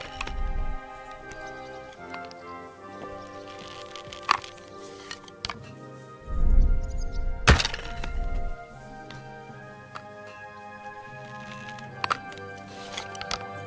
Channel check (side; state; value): both; identical; correlation 1.00